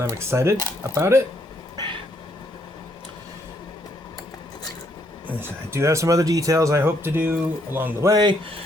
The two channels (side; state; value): both; normal; correlation 0.71